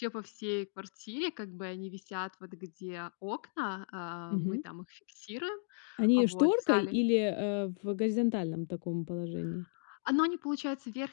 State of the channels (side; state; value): right; silent; digital silence